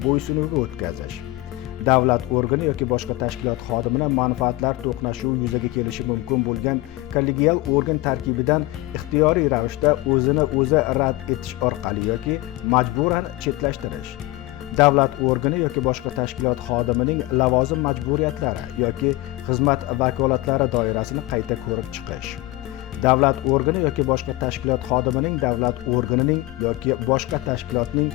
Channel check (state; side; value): quieter; right; 19.4 dB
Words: bo'ysunuviga o'tkazish. Davlat organi yoki boshqa tashkilot xodimini manfaatlar to'qnashuvi yuzaga kelishi mumkin bo'lgan kollegial organ tarkibidan ixtiyoriy ravishda o'zini o'zi rad etish orqali yoki majburan chetlashtirish. Davlat organi yoki boshqa tashkilot xodimining lavozim majburiyatlari yoki xizmat vakolatlari doirasini qayta ko'rib chiqish. Davlat organi yoki boshqa tashkilot xodimining davlat organining yoki boshqa tashkilotning